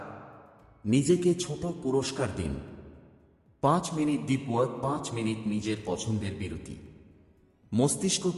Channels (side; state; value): both; identical; correlation 1.00